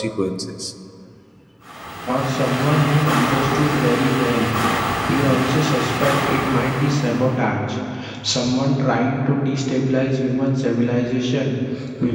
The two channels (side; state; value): both; identical; correlation 1.00